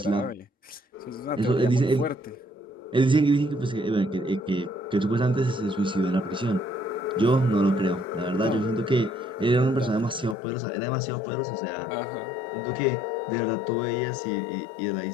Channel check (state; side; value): drops out; right; at 10.4 s